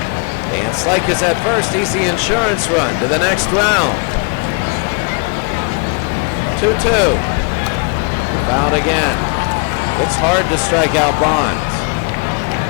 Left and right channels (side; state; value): right; quieter; 35.5 dB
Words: Van Slyke is at first. He's the insurance run to the next round. 2-2. Fouled again. It's hard to strike out Bonds.